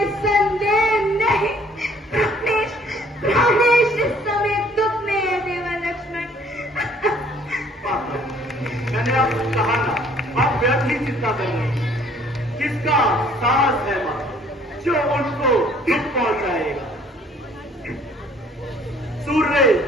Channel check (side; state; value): both; normal; correlation 0.59